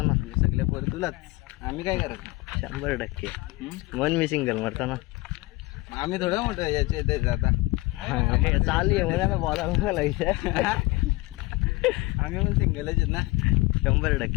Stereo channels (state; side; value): quieter; right; 21.4 dB